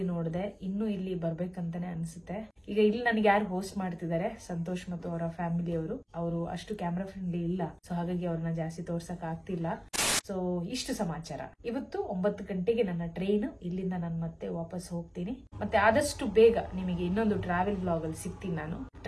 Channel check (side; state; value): both; identical; correlation 1.00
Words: ನೋಡಿದೆ. ಇನ್ನು ಇಲ್ಲಿ ಬರ್ಬೇಕಂತಾನೆ ಅನ್ಸುತ್ತೆ. ಈಗ ಇಲ್ಲಿ ನನಗೆ ಯಾರು ಹೋಸ್ಟ್ ಮಾಡ್ತಿದ್ದಾರೆ, ಸಂತೋಷ್ ಮತ್ತು ಅವರ ಫ್ಯಾಮಿಲಿಯವರು. ಅವರು ಅಷ್ಟು ಕ್ಯಾಮ್ರಾ ಫ್ರೆಂಡ್ಲಿ ಇಲ್ಲ, ಸೊ ಹಾಗಾಗಿ ಅವ್ರನ್ನ ಜಾಸ್ತಿ ತೋರ್ಸಕ್ ಆಗ್ತಿಲ್ಲ. ಸೊ ಇಷ್ಟು ಸಮಾಚಾರ. ಇವತ್ತು 9 ಗಂಟೆಗೆ ನನ್ನ ಟ್ರೈನ್. ಇಲ್ಲಿಂದ ನಾನು ಮತ್ತೆ ವಾಪಸ್ ಹೋಗ್ತೀನಿ. ಮತ್ತೆ ಆದಷ್ಟು ಬೇಗ ನಿಮಗೆ ಇನ್ನೊಂದು ಟ್ರಾವೆಲ್ ಬ್ಲಾಗ್ ಅಲ್ಲಿ ಸಿಗ್ತೀನಿ. ನಾನು